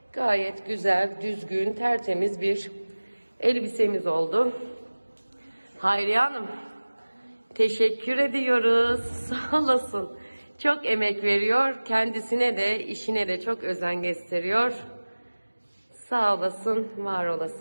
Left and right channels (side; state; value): both; inverted; correlation -1.00